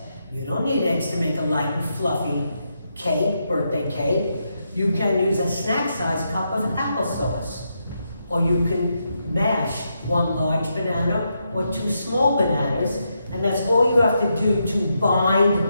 You don't need eggs to make a light and fluffy cake, birthday cake. You can use a snack-sized cup of applesauce. Or you can mash 1 large banana or 2 small bananas, and that's all you have to do to bind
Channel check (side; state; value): both; inverted; correlation -0.83